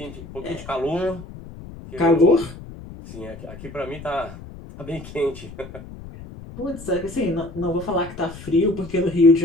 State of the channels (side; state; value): left; noise; rumble, 14 dB below the sound